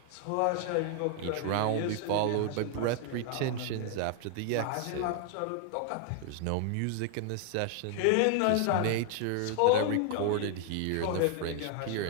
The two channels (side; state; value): both; different; correlation 0.00